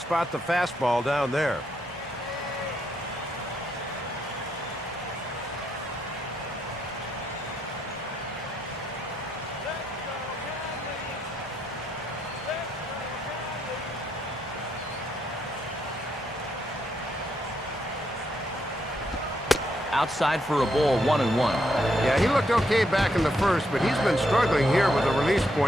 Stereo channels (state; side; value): normal; both; correlation 0.78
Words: the fastball down there. Outside for a ball, 1-1. Yeah, he looked okay back in the first, but he's been struggling here with a release